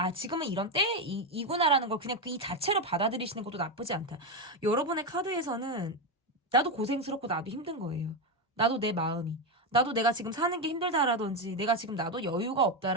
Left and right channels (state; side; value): normal; both; correlation 0.10